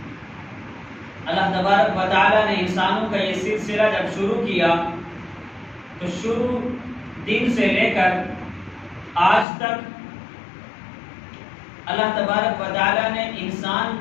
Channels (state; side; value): drops out; right; at 9.5 s